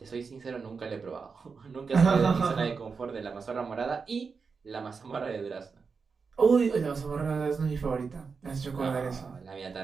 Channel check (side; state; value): left; quieter; 5.2 dB